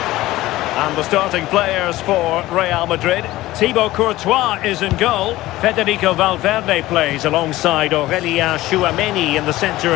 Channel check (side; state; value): right; quieter; 17.0 dB